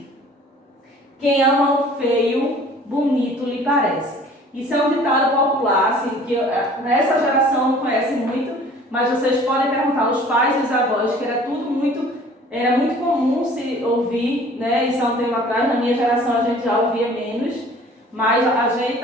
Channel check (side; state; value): both; normal; correlation 0.50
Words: quem ama o feio, bonito lhe parece. Isso é um ditado popular, assim, que nessa geração não conhece muito, mas vocês podem perguntar aos pais e os avós, que era muito comum se ouvir, né? Isso há um tempo atrás, na minha geração a gente já ouvia menos, mas a gente,